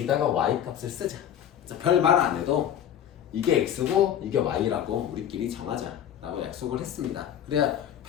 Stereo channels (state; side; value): quieter; right; 10.0 dB